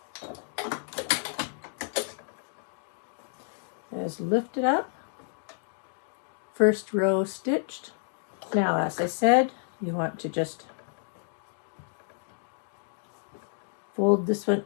Just lift it up. First row stitched. Now, as I said, you want to just fold this one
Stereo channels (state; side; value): silent; right; digital silence